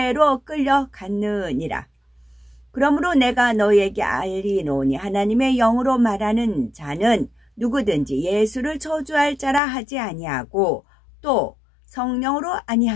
끌려갔느니라. 그러므로 내가 너희에게 알리노니 하나님의 영으로 말하는 자는 누구든지 예수를 저주할 자라 하지 아니하고 또 성령으로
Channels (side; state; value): right; drops out; at 9.6 s